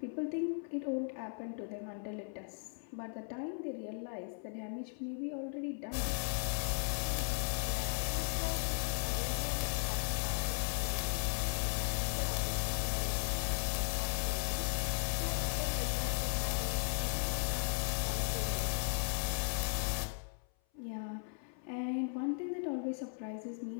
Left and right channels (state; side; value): silent; right; 53 dB below the other